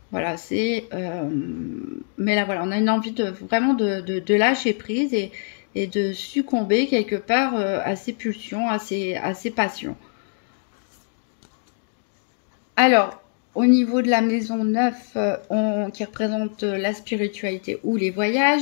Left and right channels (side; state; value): right; silent; digital silence